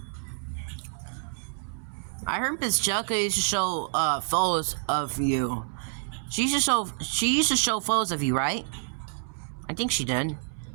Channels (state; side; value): silent; left; 59 dB below the other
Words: I heard Miss Jessica used to show photos of you. She used to show photos of you, right? I think she did.